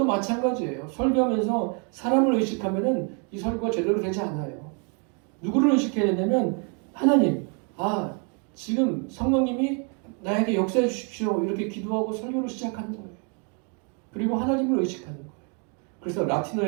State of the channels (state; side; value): quieter; left; 37.9 dB